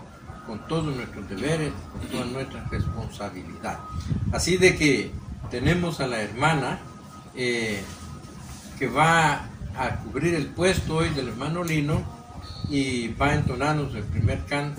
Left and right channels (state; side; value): identical; both; correlation 1.00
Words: con todos nuestros deberes, con toda nuestra responsabilidad. Así de que tenemos a la hermana que va a cubrir el puesto hoy del hermano Lino y va a entonarnos el primer